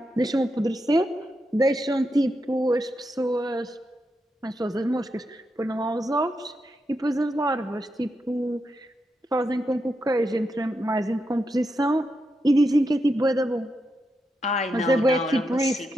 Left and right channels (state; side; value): normal; both; correlation 0.85